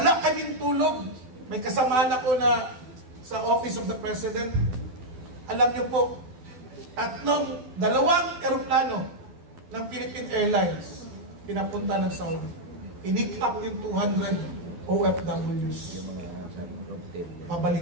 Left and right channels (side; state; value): left; late; 12 ms